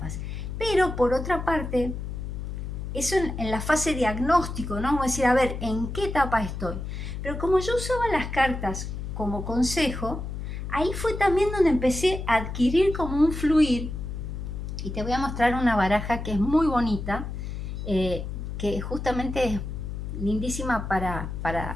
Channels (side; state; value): left; noise; hum, 6 dB below the sound